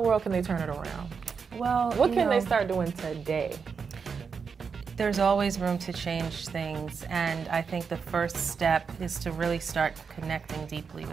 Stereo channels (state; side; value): quieter; left; 5.8 dB